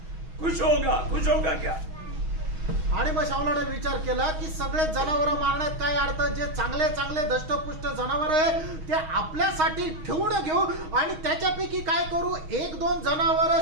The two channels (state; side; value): late; left; 6.3 ms